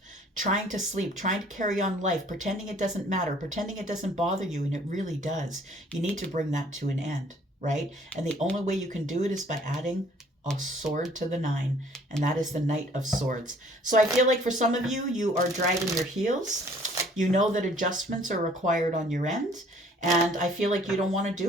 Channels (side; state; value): both; normal; correlation 0.57